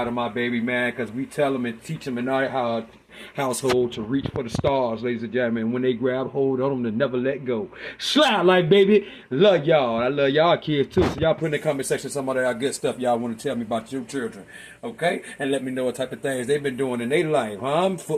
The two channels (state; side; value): identical; both; correlation 1.00